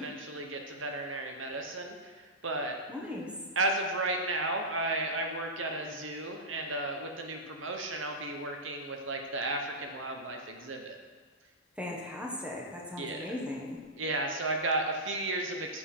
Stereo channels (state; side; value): normal; both; correlation -0.12